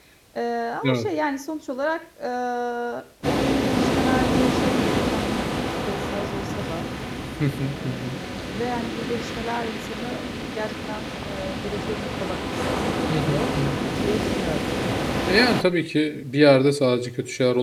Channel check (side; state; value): both; identical; correlation 1.00